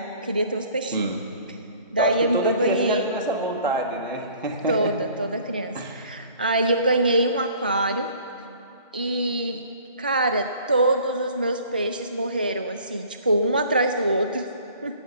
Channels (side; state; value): both; inverted; correlation -0.51